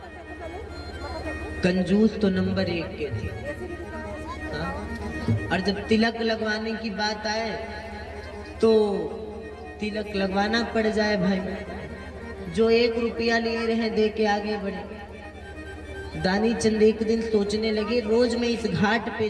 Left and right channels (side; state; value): both; identical; correlation 1.00